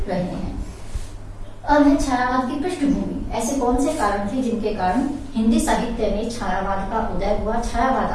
रहे हैं। अब है छायावाद की पृष्ठभूमि। ऐसे कौन से कारण थे जिनके कारण हिंदी साहित्य में छायावाद का उदय हुआ, छायावाद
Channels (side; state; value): both; identical; correlation 1.00